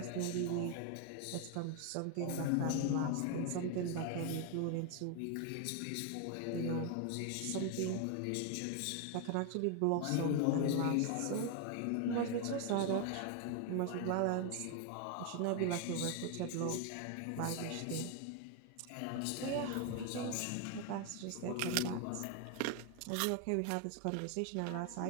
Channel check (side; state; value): both; different; correlation 0.01